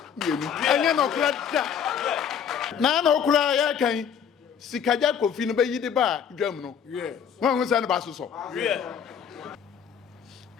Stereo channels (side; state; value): right; quieter; 7.8 dB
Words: And you know, no cry. Can Sikaja Kofi no be yidi ba dwam no. Wan ho san ba so.